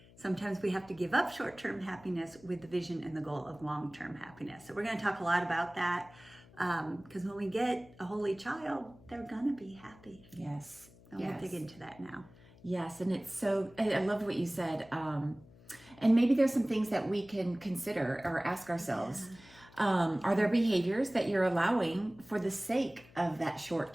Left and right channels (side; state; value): left; noise; hum, 24 dB below the sound